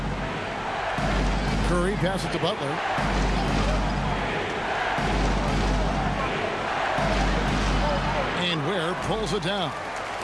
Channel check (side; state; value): both; identical; correlation 1.00